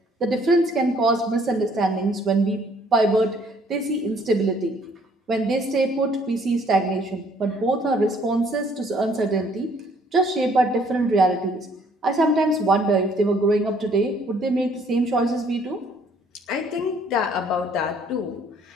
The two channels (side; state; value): both; normal; correlation 0.62